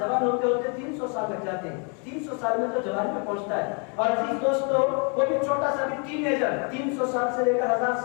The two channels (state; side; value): quieter; right; 37.0 dB